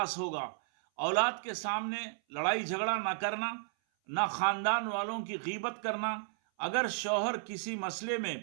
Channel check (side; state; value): left; silent; 55 dB below the other